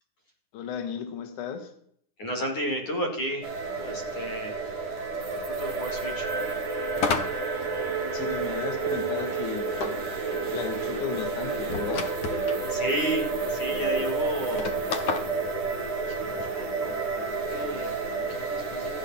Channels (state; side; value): late; right; 9.9 ms